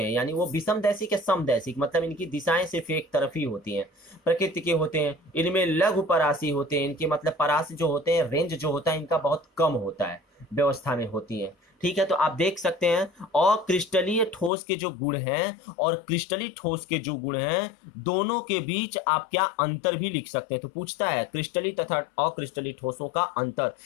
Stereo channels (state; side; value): drops out; right; at 14.5 s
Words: यानी वो विषमदैशिक या समदैशिक, मतलब इनकी दिशाएं सिर्फ एक तरफ ही होती हैं, प्रकृति के होते हैं, इनमें लघु परासी होते हैं, इनके मतलब परासी जो होते हैं, रेंज जो होता है इनका बहुत कम होता है, व्यवस्था में होती है। ठीक है, तो आप देख सकते हैं अक्रिस्टलीय ठोस के जो गुण हैं और क्रिस्टलीय ठोस के जो गुण हैं, दोनों के बीच आप क्या अंतर भी लिख सकते हैं। तो पूछता है क्रिस्टलीय तथा अक्रिस्टलीय ठोसों का अंतर,